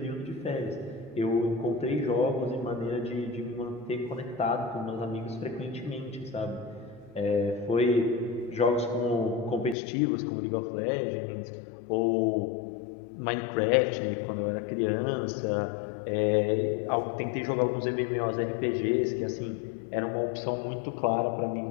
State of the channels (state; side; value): drops out; right; at 9.8 s